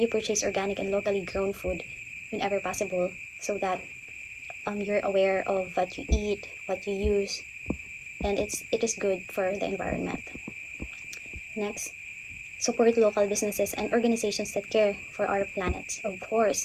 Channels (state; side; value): identical; both; correlation 1.00